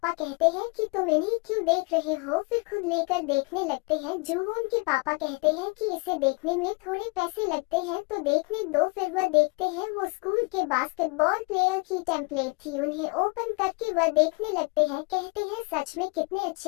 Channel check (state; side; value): quieter; right; 30.0 dB